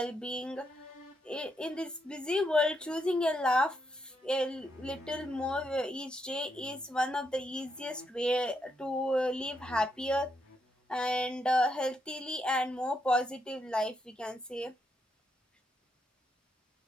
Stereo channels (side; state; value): both; normal; correlation 0.80